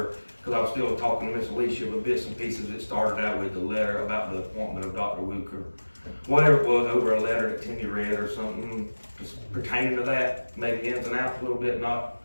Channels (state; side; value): inverted; both; correlation -1.00